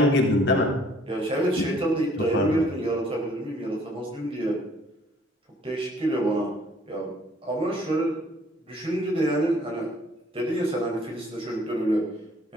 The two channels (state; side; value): normal; both; correlation 0.59